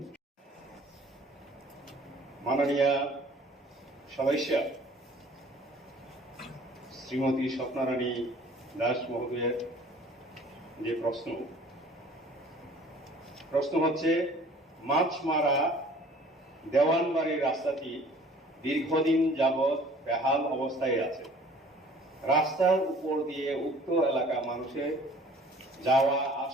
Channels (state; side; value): normal; both; correlation 0.51